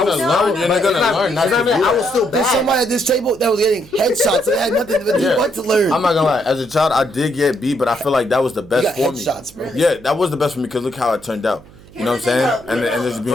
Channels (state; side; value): noise; right; hum, 23 dB below the sound